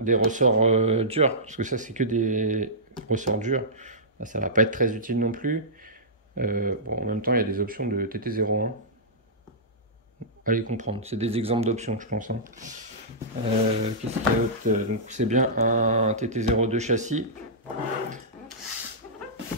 ressorts durs, parce que ça, c'est que des ressorts durs. Ça va pas être très utile non plus. Bon, en même temps, il y a des options de TT01. Allez comprendre. C'est des exemples d'options, je pense. Hein. Qu'est-ce qu'il y a d'autre? Donc, c'est bien un TT02 châssis.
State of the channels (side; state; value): both; normal; correlation -0.15